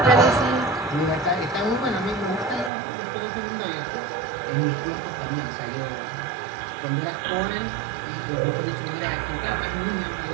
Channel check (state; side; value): drops out; left; at 2.7 s